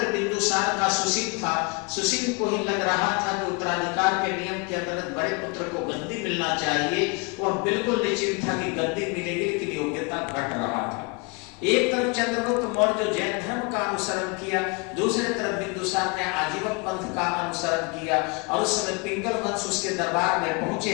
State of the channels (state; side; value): quieter; right; 31.6 dB